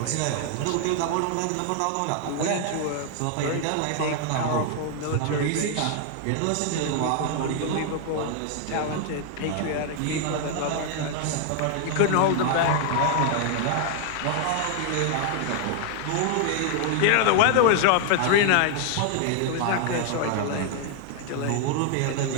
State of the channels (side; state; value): both; different; correlation 0.00